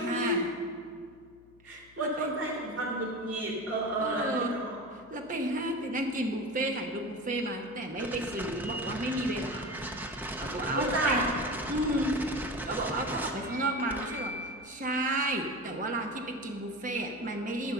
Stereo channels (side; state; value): left; noise; hum, 27 dB below the sound